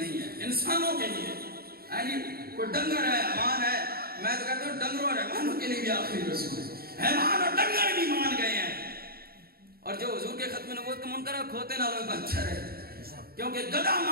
ہے، انسانوں کے لیے کوئی ڈنگر ہے، حیوان ہے، میں تو کہتا ہوں ڈنگروں اور حیوانوں کے لیے بھی آخری رسول ہے۔ حیوان اور ڈنگر بھی مان گئے ہیں، اور جو حضور کے ختم نبوت کا منکر ہے کھوتے نالوں میں بچہ ہے، کیونکہ گدھا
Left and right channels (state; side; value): late; left; 0.44 ms